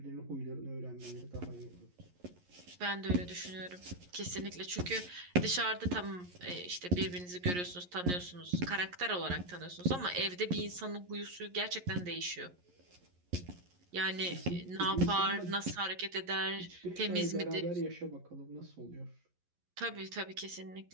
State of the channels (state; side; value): late; left; 11 ms